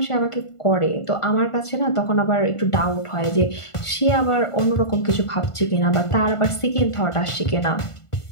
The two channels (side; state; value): right; late; 1.5 ms